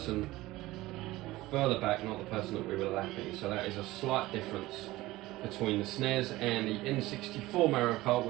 further back, not the person that we were lapping. So that is a slight difference between the SNES and the N64 Mario Kart,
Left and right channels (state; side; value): quieter; left; 18.2 dB